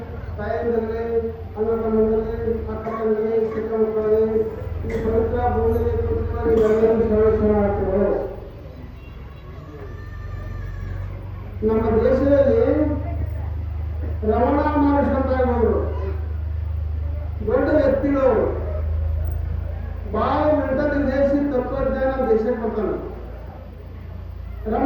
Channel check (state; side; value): identical; both; correlation 1.00